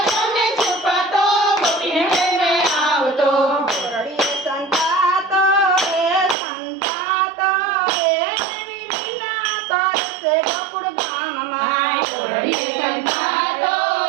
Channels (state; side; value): drops out; left; at 6.4 s